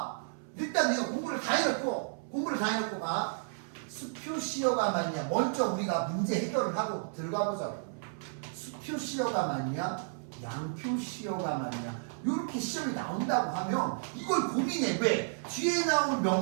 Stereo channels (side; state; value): left; silent; 56 dB below the other